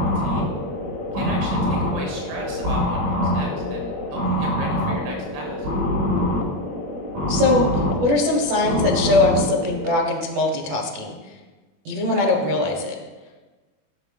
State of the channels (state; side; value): late; left; 21 ms